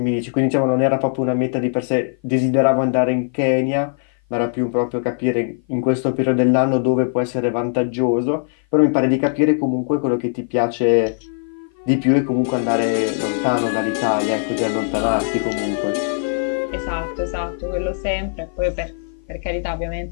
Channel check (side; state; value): right; silent; 56 dB below the other